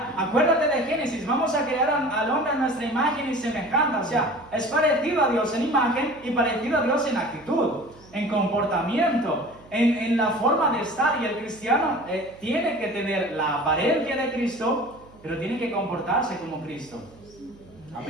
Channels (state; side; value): noise; right; hum, 25 dB below the sound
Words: acuérdate de Génesis, vamos a crear al hombre a nuestra imagen y semejanza. O sea, es parecido a Dios en imagen y parecido a Dios en actitud, en comportamiento, en la forma de estar. Y el cristiano tiene que tener la apariencia de Cristo, pero tiene que comportarse como Cristo.